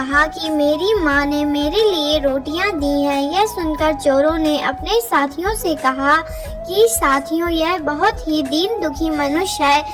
कि मेरी माँ ने मेरे लिए रोटियां दी हैं। यह सुनकर चोरों ने अपने साथियों से कहा कि साथियों, यह बहुत ही दीन दुखी मनुष्य है,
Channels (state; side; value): identical; both; correlation 1.00